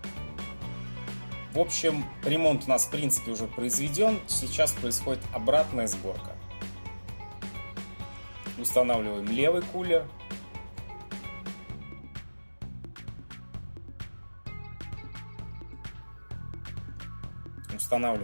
В общем, ремонт у нас в принципе уже произведен. Сейчас происходит обратная сборка. Устанавливаем левый кулер.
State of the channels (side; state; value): both; inverted; correlation -1.00